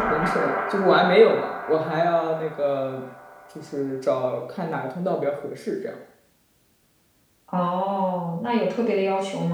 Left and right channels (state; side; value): identical; both; correlation 1.00